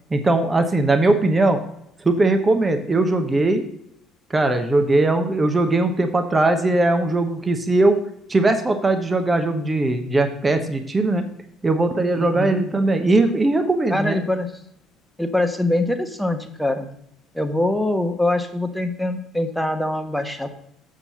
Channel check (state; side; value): normal; both; correlation 0.82